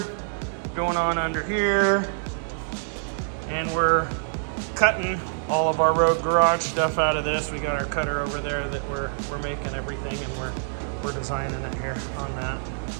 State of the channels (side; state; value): left; silent; 61 dB below the other